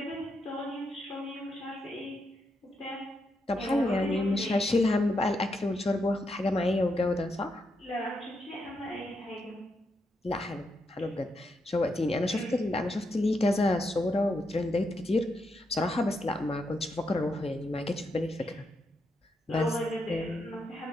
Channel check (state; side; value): normal; both; correlation 0.82